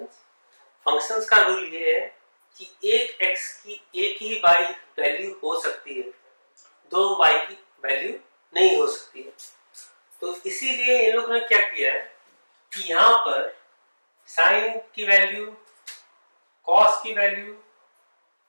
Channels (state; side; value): inverted; both; correlation -1.00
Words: फंक्शंस का रूल ये है कि एक x की एक ही y वैल्यू हो सकती है, दो y की वैल्यू नहीं हो सकती है। तो इसीलिए इन लोगों ने क्या किया है कि यहाँ पर sin की वैल्यू, cos की वैल्यू,